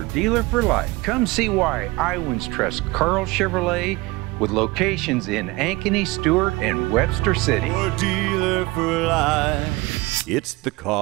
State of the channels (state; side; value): quieter; left; 21.8 dB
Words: dealer for life. Come see why Iowans trust Carl Chevrolet, with locations in Ankeny, Stewart, and Webster City. Your dealer for life, it's the